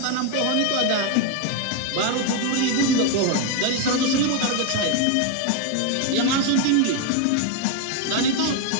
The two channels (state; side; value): different; both; correlation 0.01